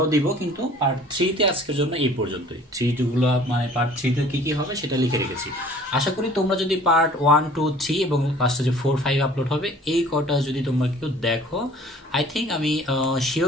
দিব, কিন্তু পার্ট 3-তে আজকের জন্য এই পর্যন্তই। 3 মানে পার্ট 3-তে কি কি হবে সেটা লিখে রেখেছি। আশা করি তোমরা যদি পার্ট 1 2 3 এবং লাস্টে যে 4 5 আপলোড হবে এই কটা যদি তোমরা কেউ দেখো, আই থিঙ্ক আমি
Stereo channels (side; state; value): both; normal; correlation 0.51